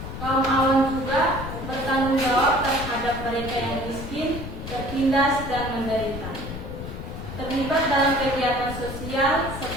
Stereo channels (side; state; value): left; noise; rumble, 8 dB below the sound